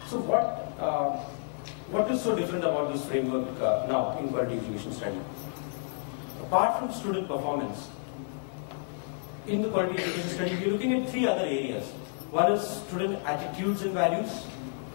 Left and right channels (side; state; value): right; silent; 58 dB below the other